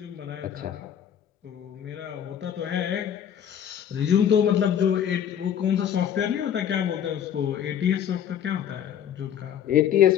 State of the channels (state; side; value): quieter; right; 9.4 dB